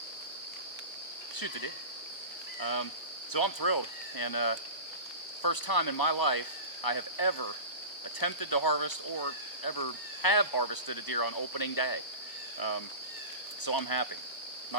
Shoot the deer. So I'm thrilled, and first time in my life I have ever attempted to harvest or ever have harvested a deer on opening day. So I'm happy.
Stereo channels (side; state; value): right; late; 1.0 ms